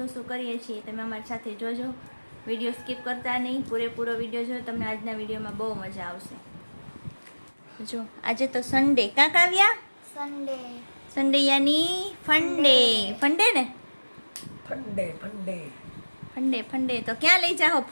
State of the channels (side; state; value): both; inverted; correlation -1.00